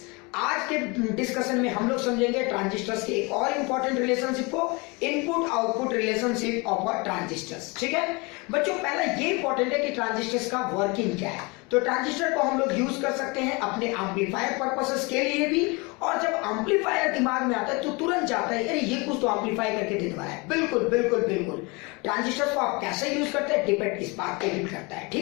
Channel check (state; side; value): quieter; right; 27.7 dB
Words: आज के डिस्कशन में हम लोग समझेंगे ट्रांजिस्टर्स के एक और इंपॉर्टेंट रिलेशनशिप को, input output relationship of a transistors. ठीक है बच्चों, पहला ये इंपॉर्टेंट है कि ट्रांजिस्टर्स का वर्किंग क्या है। तो ट्रांजिस्टर को हम लोग यूज कर सकते हैं अपने एम्पलीफायर पर्पसेस के लिए भी, और जब एम्पलीफायर दिमाग में आता है तो तुरंत जाता है अरे ये कुछ तो एम्पलीफाई करके दे रहा है। बिल्कुल बिल्कुल बिल्कुल, ट्रांजिस्टर्स को आप कैसे यूज करते हैं डिपेंड इस बात पे भी करता है।